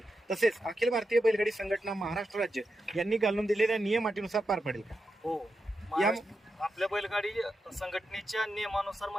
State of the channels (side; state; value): both; normal; correlation 0.88